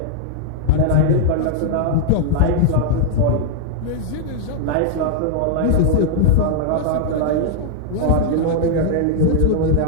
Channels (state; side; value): different; both; correlation -0.01